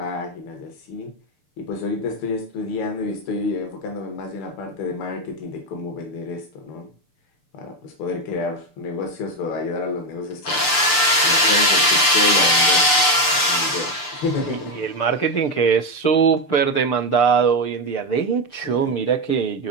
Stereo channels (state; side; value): late; right; 6.8 ms